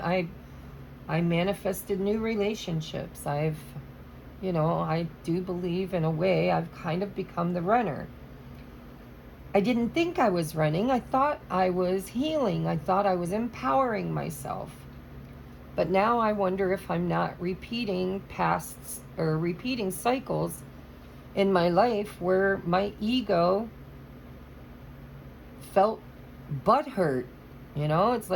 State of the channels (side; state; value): both; identical; correlation 1.00